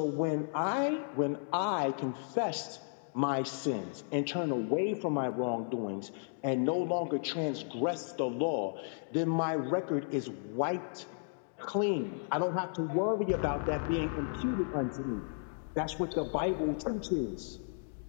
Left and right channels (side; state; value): right; silent; digital silence